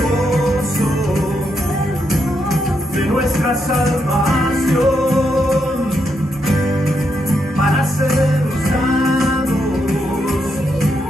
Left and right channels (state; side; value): normal; both; correlation 0.80